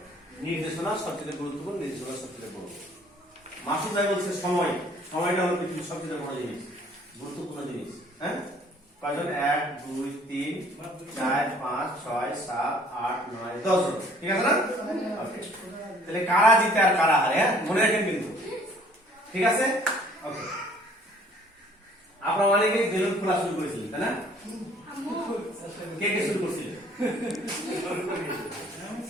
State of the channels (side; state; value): both; normal; correlation 0.56